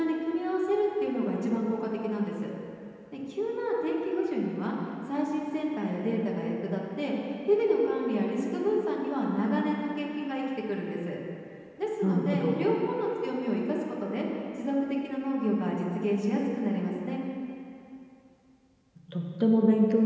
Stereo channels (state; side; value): identical; both; correlation 1.00